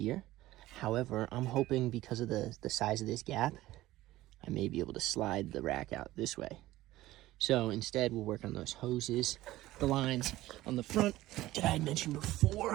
However, I'm hoping because of the size of this gap, I may be able to slide the rack out this way. So instead, we'll work on those hoses, the lines on the front that I had mentioned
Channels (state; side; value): quieter; left; 16.3 dB